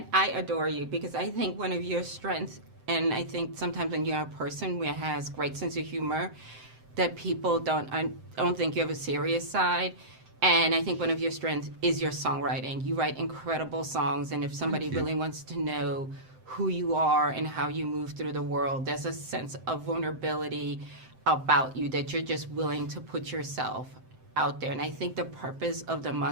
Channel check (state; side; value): late; left; 7.7 ms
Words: I adore you because I think one of your strengths, and I think sometimes when you're a person who has great sense of humor, that people don't think you have a serious side. And I think one of your strengths is your songwriting. You write incredible songs, and if somebody really wants to know who you are and how you move through the world, there's a sense of vulnerability about you that you're just willing to put yourself out there. And I think the purpose of The